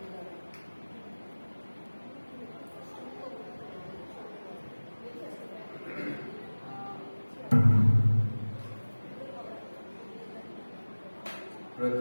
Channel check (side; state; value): both; inverted; correlation -1.00